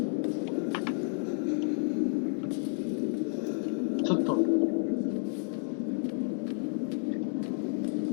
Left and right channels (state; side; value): silent; right; digital silence